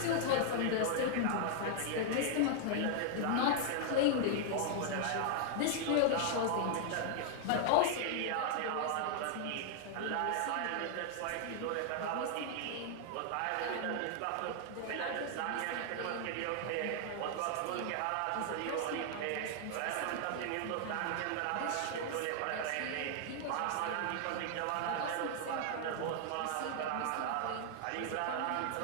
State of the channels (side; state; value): both; different; correlation 0.00